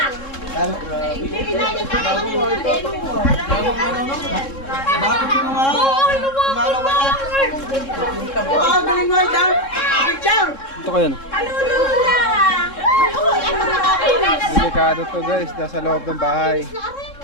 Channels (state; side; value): late; right; 3.7 ms